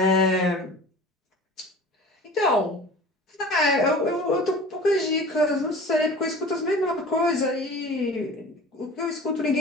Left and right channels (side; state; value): both; normal; correlation 0.41